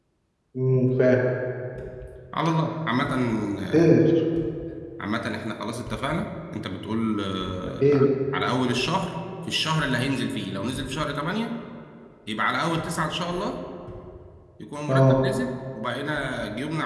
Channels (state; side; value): identical; both; correlation 1.00